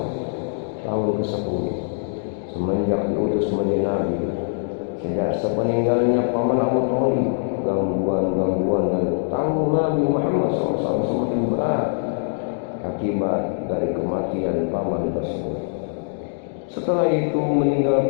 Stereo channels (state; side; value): silent; right; digital silence